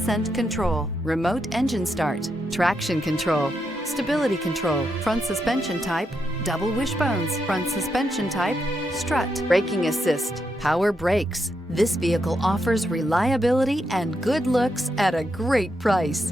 control, remote engine start, traction control, stability control, front suspension type, double wishbones, front suspension type, strut, braking assist, power brakes. This vehicle offers reliability and good looks at a great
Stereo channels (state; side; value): normal; both; correlation 0.82